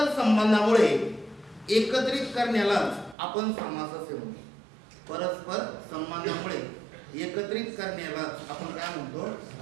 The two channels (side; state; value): left; drops out; at 3.2 s